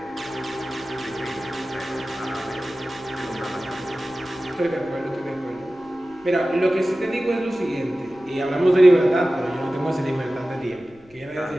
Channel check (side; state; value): left; noise; rumble, 28 dB below the sound